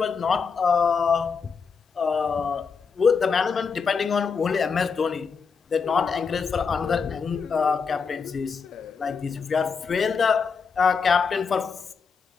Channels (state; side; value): quieter; right; 5.6 dB